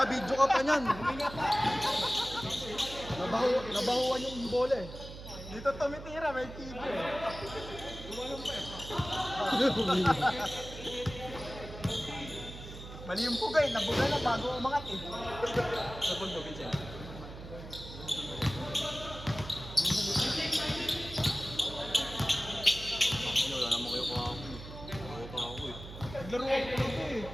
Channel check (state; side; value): noise; right; hum, 12 dB below the sound